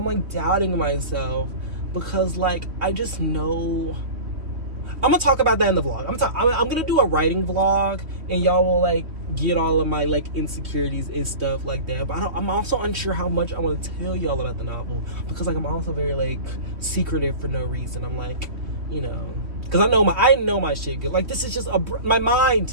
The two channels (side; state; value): left; late; 3.1 ms